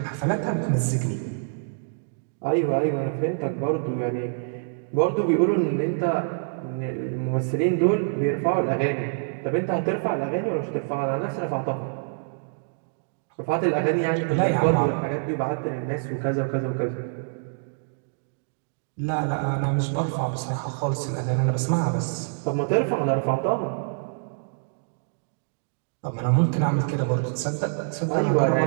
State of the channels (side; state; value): left; silent; digital silence